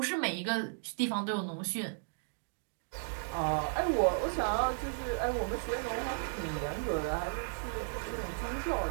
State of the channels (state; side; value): silent; left; digital silence